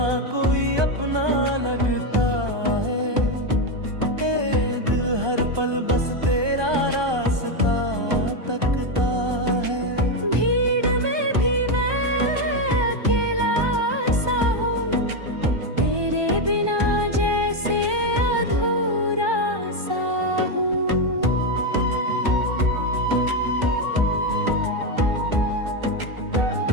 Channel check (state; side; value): late; left; 1.2 ms